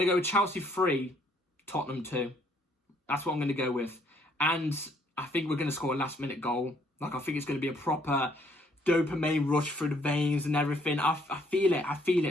to go with Chelsea 3, Tottenham 2. That's what I'm going to go with. And I think we're going to score a last-minute goal. Like, I think it's going to be a proper dopamine rush through the veins and everything. I feel it. I feel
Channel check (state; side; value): normal; both; correlation 0.66